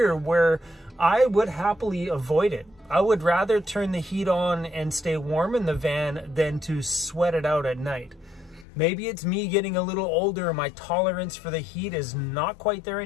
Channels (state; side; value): drops out; right; at 8.7 s